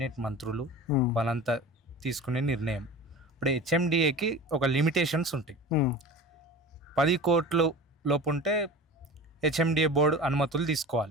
మంత్రులు హ్మ్. వాళ్ళంతా తీసుకునే నిర్ణయం. ఇప్పుడు హెచ్ఎండిఏకి ఒక లిమిటేషన్స్ ఉంటాయి. హ్మ్. 10,00,00,000 లోపుంటే హెచ్ఎండిఏ బోర్డు అనుమతులు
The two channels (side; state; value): both; normal; correlation 0.35